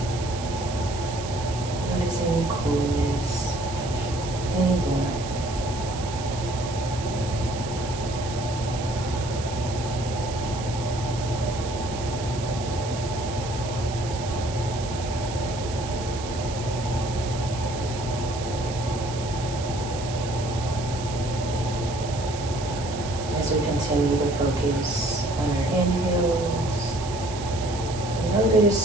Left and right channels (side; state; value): right; noise; hiss, 12 dB below the sound